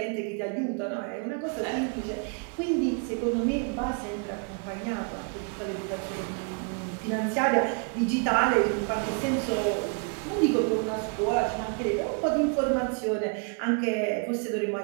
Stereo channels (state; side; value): quieter; left; 37.5 dB